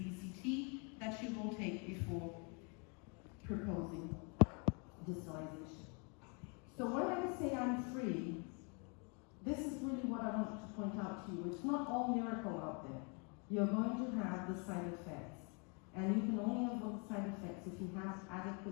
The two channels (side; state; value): right; quieter; 35.3 dB